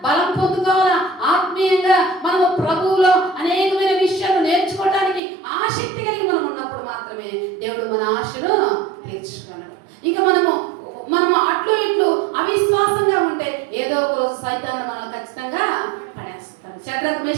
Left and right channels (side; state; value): left; drops out; at 5.2 s